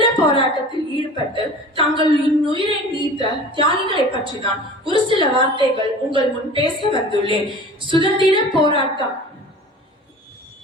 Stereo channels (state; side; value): normal; both; correlation 0.41